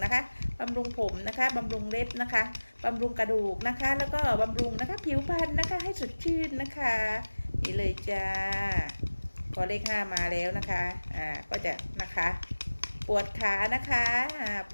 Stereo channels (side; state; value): both; inverted; correlation -1.00